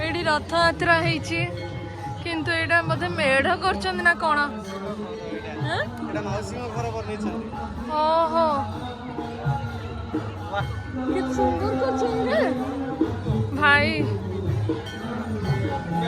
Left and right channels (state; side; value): identical; both; correlation 1.00